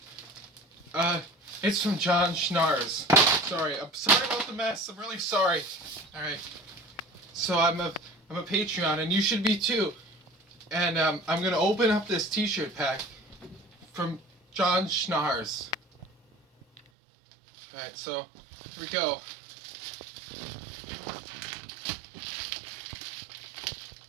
It's from John Schnars. I'm sorry about the mess. I'm really sorry. All right. So I'm a Patreon, and you should be too. And I'm gonna open up this T-shirt pack from John Schnars. All right. So here we go.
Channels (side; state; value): left; drops out; at 16.8 s